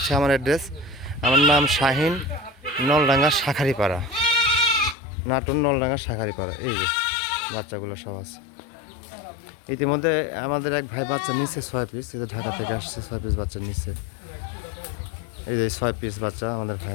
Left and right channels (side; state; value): right; drops out; at 5.0 s